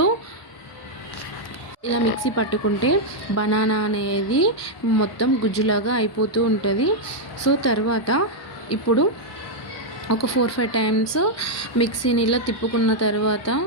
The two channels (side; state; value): both; normal; correlation -0.02